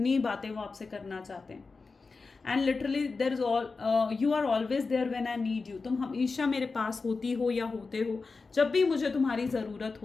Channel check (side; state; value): right; quieter; 4.2 dB